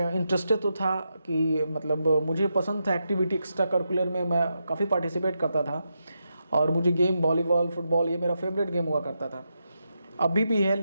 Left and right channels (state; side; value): inverted; both; correlation -0.85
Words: इंटरेस्टेड तो था कि मतलब मुझे पसंद था एक्टिविटी, एक्स्ट्रा करिकुलर में मैं काफ़ी पार्टिसिपेट करता था, और मुझे गेम वॉलीबॉल, फुटबॉल, ये मेरा फेवरेट गेम हुआ करता था। अभी भी है,